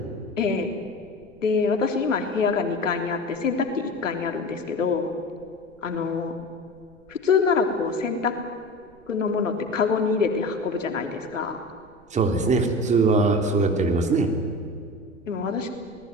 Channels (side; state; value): right; noise; rumble, 29 dB below the sound